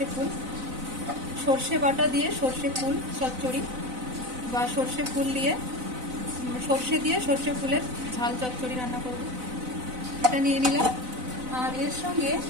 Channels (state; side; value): late; left; 4.0 ms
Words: ফুল। সর্ষে বাটা দিয়ে সর্ষে ফুল চচ্চড়ি বা সর্ষে ফুল দিয়ে সর্ষে দিয়ে সর্ষে ফুলের ঝাল চচ্চড়ি রান্না করব। এটা নিয়ে নিলাম। আর এর সঙ্গে